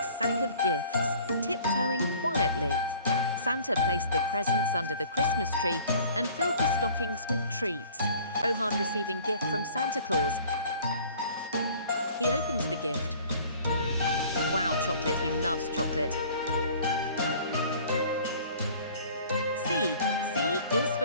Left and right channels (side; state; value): both; inverted; correlation -0.50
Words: sack of gifts, tiptoeing quietly. Santa placed the presents under the Christmas tree and filled the stockings with treats. Rohan receiving gift from Santa Claus. He opens the gift. Wow, chocolate, he loves chocolate. C is